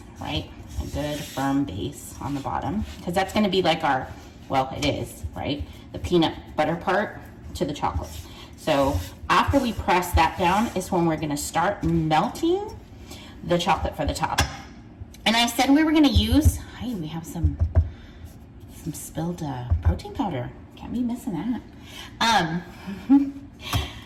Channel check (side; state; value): both; identical; correlation 1.00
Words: right? A good firm base on the bottom, because that's going to be like our, well, it is, right? The peanut butter part to the chocolate. So after we press that down is when we're going to start melting the chocolate for the top. And I said we were going to use, hey, we have some spilled protein powder. Can't be missing that.